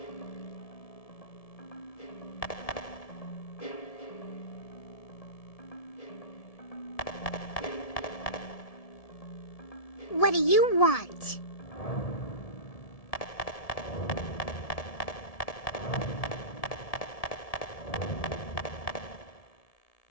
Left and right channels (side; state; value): right; late; 1.7 ms